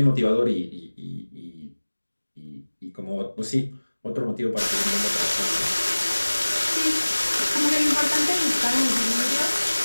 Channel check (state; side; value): inverted; both; correlation -1.00